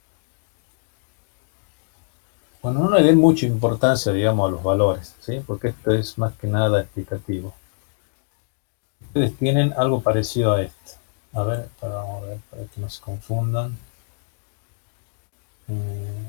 Bueno, no le den mucha importancia, digamos, a los valores, ¿sí? Porque esto es más que nada explicativo. Ustedes tienen algo parecido a esto. A ver, vamos a ver, para que no se confundan.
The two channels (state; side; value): silent; right; digital silence